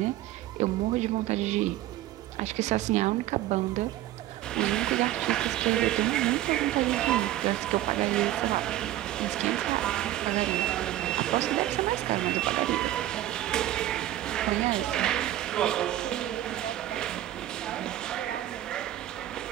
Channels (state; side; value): quieter; left; 14.1 dB